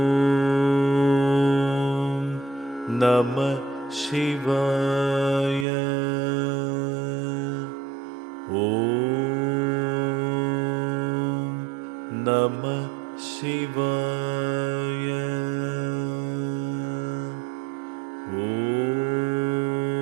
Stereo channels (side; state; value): left; drops out; at 5.7 s